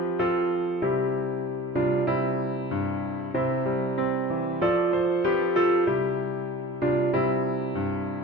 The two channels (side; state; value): both; normal; correlation 0.42